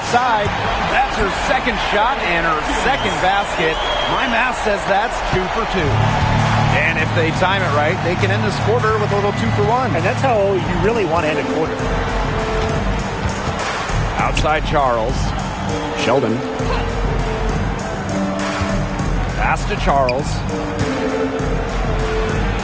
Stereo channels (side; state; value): both; identical; correlation 1.00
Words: That's her second shot and her second basket. My math says that's 2 for 2. And if they time it right, they can end this quarter with a little 2 for 1. And that's how you really want to end a quarter. Outside Charles. Sheldon. Pass to Charles.